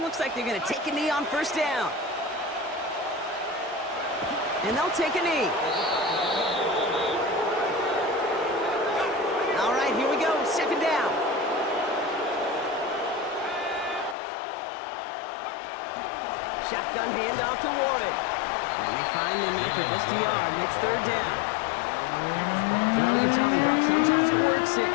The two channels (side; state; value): right; drops out; at 14.2 s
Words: Looks like they're going to take a knee on 1st down. And they'll take a knee. All right, here we go. 2nd down. Shotgun handoff to Warren. And they find him after just a yard. It's 3rd down. Well, you tell me, Brock, sometimes it works,